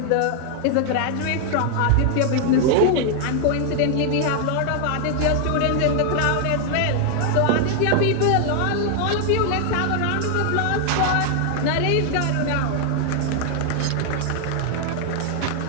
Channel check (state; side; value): different; both; correlation 0.00